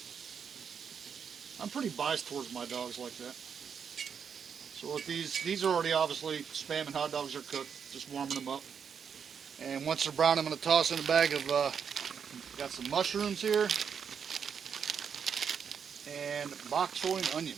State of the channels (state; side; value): quieter; left; 7.0 dB